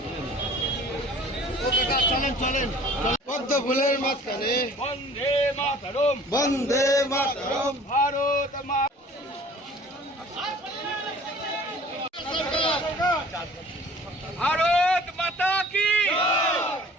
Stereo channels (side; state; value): both; normal; correlation 0.49